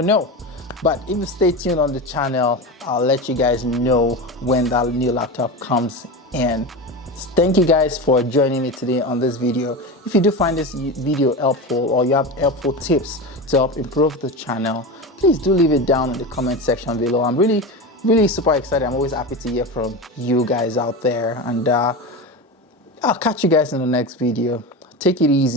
know. But if you stay tuned on the channel, I'll let you guys know when that new laptop comes in. Thank you guys for joining me today on this video. If you do find this video helpful, or you have helpful tips to help improve the channel, please do leave it down in the comment section below. I'm really super excited. I'm always happy to hear from you guys out there, and I'll catch you guys in the next video. Take it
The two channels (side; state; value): both; normal; correlation 0.23